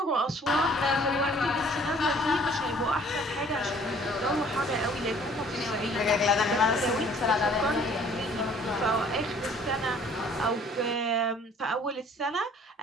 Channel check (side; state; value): both; normal; correlation 0.55